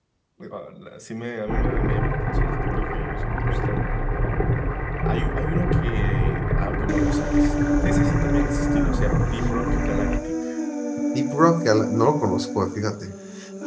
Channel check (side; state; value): both; identical; correlation 1.00